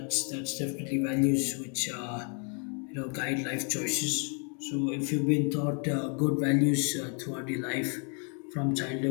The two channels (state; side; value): quieter; right; 39.7 dB